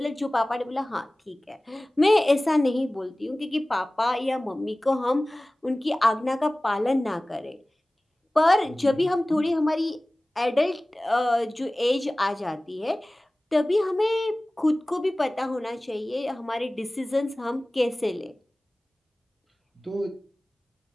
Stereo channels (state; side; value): normal; both; correlation 0.98